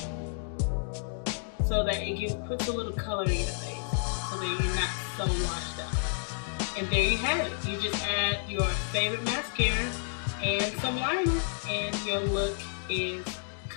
so that it puts a little color in your face, so that you're not so washed out. And there you have it. You just add your favorite mascara and some liner, and your look is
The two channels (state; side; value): silent; right; digital silence